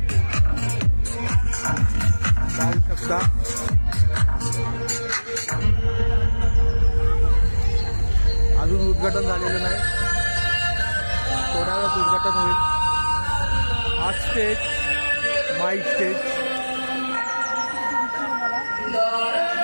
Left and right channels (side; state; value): both; inverted; correlation -1.00